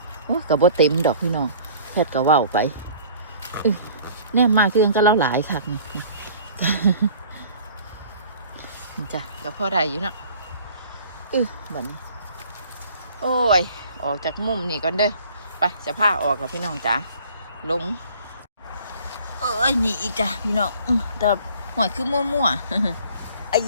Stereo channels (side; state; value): both; inverted; correlation -0.50